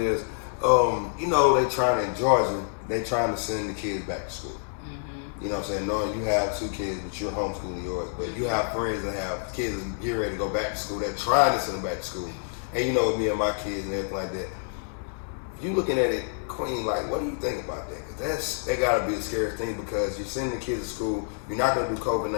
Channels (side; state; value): right; silent; digital silence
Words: you know, in Georgia, they trying to send the kids back to school. Mm-hmm. You know what I'm saying? Knowing you have 2 kids, but you're homeschooling yours, but you have friends that have kids that get ready to go back to school, they're trying to send them back to school. And you know, with me and my kids and everything like that, if you looking at it, Queen, like, what do you think about that? Because that gotta be the scariest thing, because you're sending the kids to school, you're not gonna do